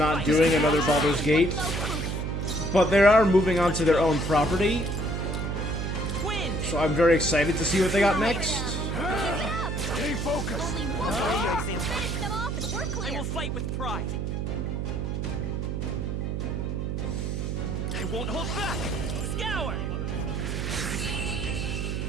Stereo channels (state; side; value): noise; right; hum, 2 dB below the sound